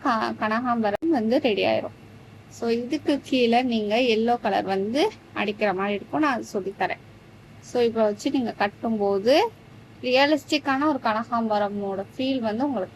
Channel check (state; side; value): identical; both; correlation 1.00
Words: கனகாம்பரம் வந்து ரெடி ஆயிரும். ஸோ இதுக்கு கீழே நீங்க எல்லோ கலர் வந்து அடிக்கிற மாதிரி இருக்கும். நான் அது சொல்லித்தரேன். ஸோ இப்போ வச்சு நீங்க கட்டும்போது ரியலிஸ்டிக்கான ஒரு கனகாம்பரமோட ஃபீல் வந்து